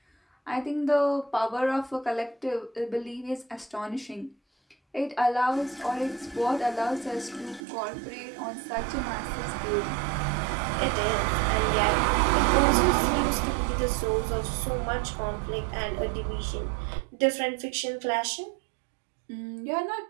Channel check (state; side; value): drops out; left; at 7.6 s